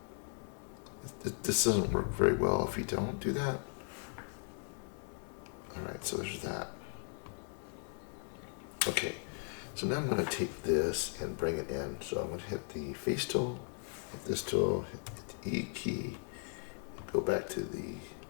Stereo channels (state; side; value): silent; right; 53 dB below the other